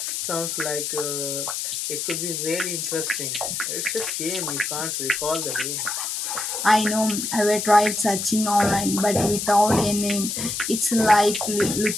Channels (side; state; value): left; noise; hiss, 3 dB below the sound